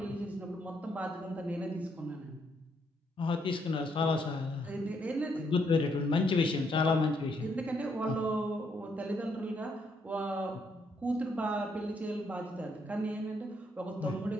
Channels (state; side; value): normal; both; correlation 0.73